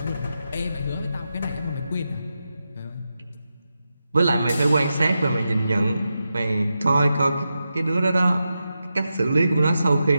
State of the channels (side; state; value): both; inverted; correlation -0.89